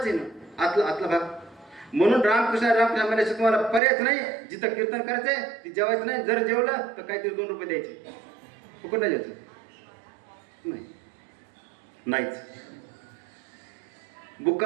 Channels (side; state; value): left; drops out; at 3.8 s